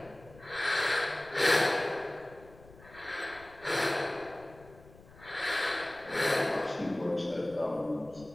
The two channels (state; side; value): noise; left; rumble, 22 dB below the sound